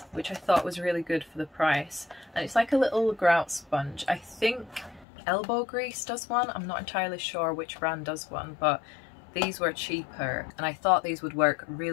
which I thought was really good for the price. And it's like a little grout sponge. I think Elbow Grease does one. I'm not entirely sure which brand does one, but these were cheaper. And I thought these would work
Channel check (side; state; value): right; drops out; at 5.1 s